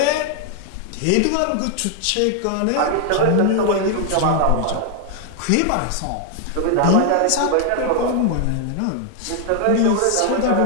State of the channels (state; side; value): different; both; correlation 0.00